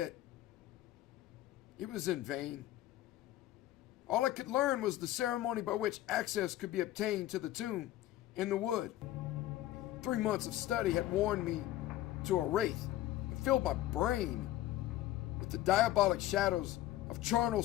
It was in vain. All I could learn was the ceremony by which access could be obtained to the tomb in the wood. 3 months of study had worn me to a wraith and filled my brain with the diabolic shadows of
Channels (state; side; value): quieter; right; 14.4 dB